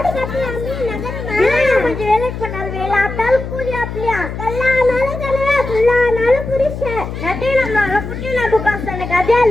கட்டலாமே நகரமா கொஞ்சம் வேலைக்கு பண்ணாலும் வேலை ஆட்டாலும் கூலி அப்படியா கல்லானாலும் கலையா புல்லானாலும் புரிஷன் நட்டையினாலும் குட்டினாலும் சொன்ன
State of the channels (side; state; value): left; noise; hum, 7 dB below the sound